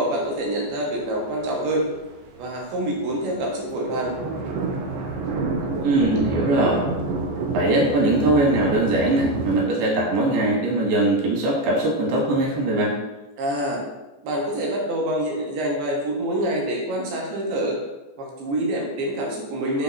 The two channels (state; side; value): late; left; 14 ms